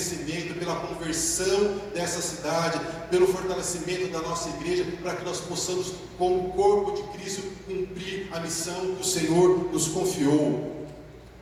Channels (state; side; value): identical; both; correlation 1.00